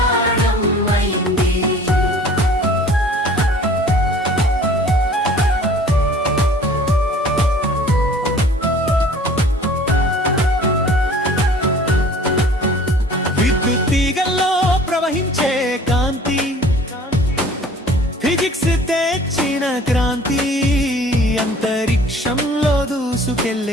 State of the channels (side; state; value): both; normal; correlation 0.49